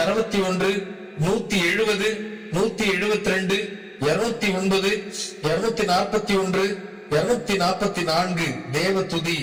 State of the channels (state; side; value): identical; both; correlation 1.00